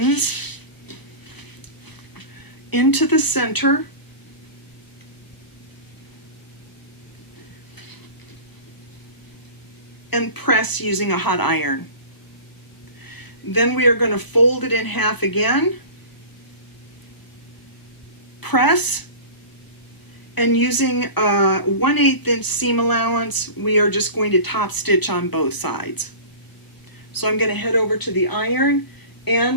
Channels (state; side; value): late; right; 1.0 ms